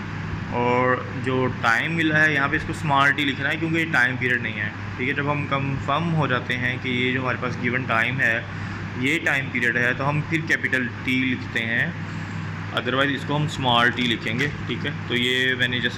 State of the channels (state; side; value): identical; both; correlation 1.00